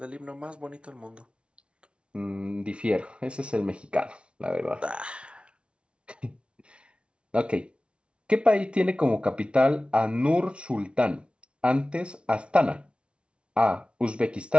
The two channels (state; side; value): late; left; 0.058 ms